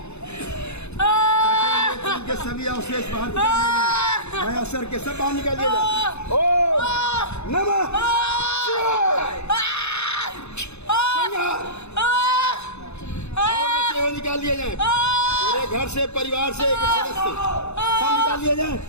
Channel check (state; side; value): late; right; 0.81 ms